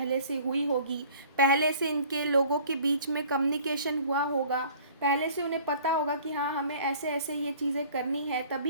से हुई होगी, पहले से इनके लोगों के बीच में कम्युनिकेशन हुआ होगा, पहले से उन्हें पता होगा कि हाँ हमें ऐसे ऐसे ये चीज़ें करनी है,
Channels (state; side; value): inverted; both; correlation -0.51